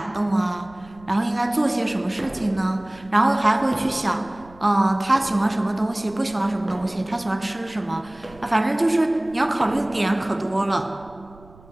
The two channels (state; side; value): noise; right; rumble, 24 dB below the sound